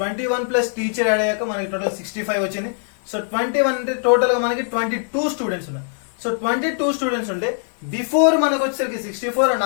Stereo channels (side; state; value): right; silent; digital silence